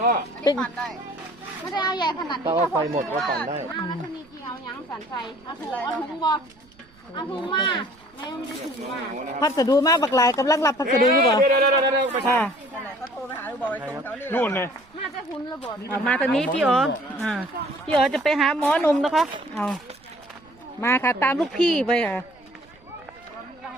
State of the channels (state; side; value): noise; right; rumble, 29 dB below the sound